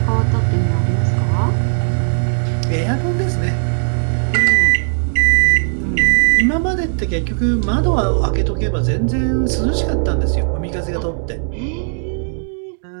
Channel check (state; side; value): silent; left; digital silence